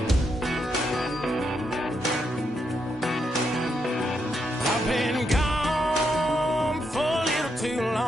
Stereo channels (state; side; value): normal; both; correlation 0.81